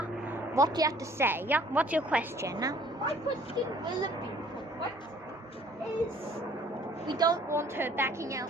What do you have to say? What's your question? My question will be, what is... We don't want her backing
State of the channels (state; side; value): normal; both; correlation 0.56